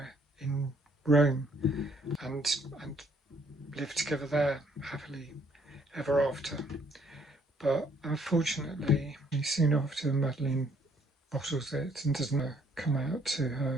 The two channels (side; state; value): both; normal; correlation 0.65